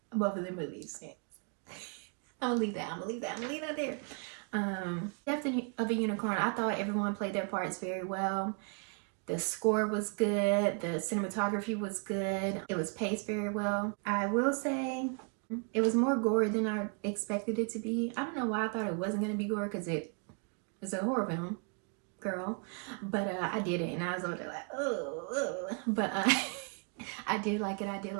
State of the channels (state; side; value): quieter; left; 39.5 dB